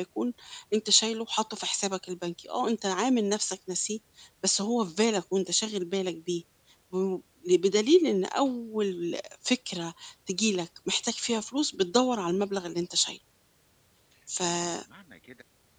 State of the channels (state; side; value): identical; both; correlation 1.00